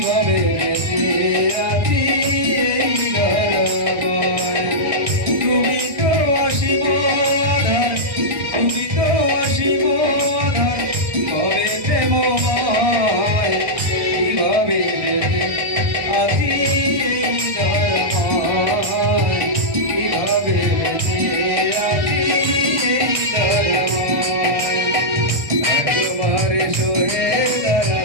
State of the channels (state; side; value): late; left; 1.6 ms